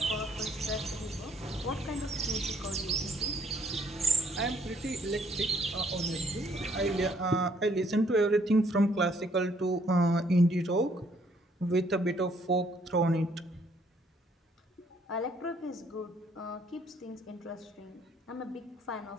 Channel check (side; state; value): both; normal; correlation 0.66